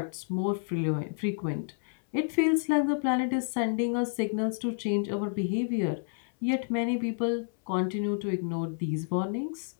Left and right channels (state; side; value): silent; right; 58 dB below the other